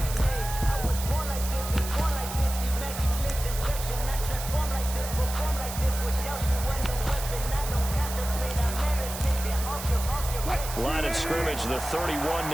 Line of scrimmage, the 31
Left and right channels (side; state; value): right; noise; hiss, 8 dB below the sound